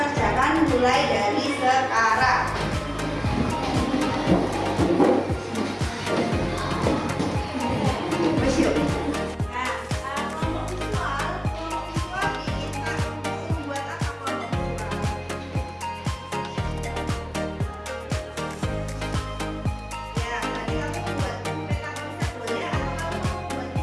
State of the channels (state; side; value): identical; both; correlation 1.00